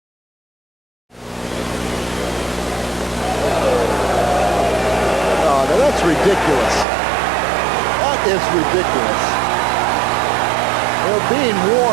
Oh, now that's ridiculous. That is ridiculous. They're being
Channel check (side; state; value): left; drops out; at 6.9 s